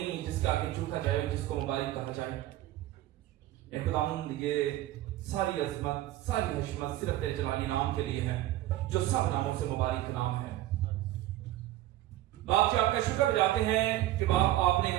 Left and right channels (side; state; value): left; quieter; 14.9 dB